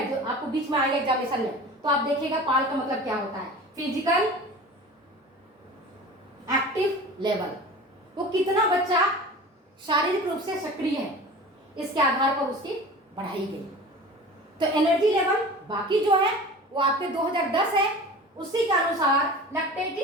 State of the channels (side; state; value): both; normal; correlation 0.37